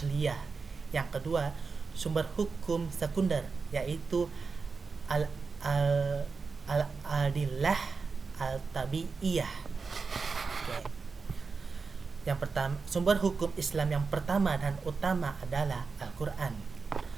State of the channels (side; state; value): left; quieter; 4.7 dB